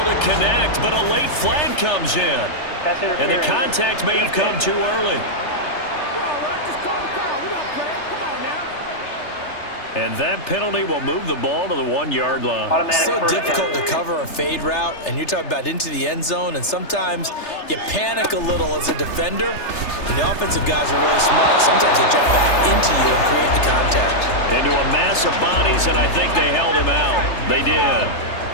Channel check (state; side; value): late; right; 3.3 ms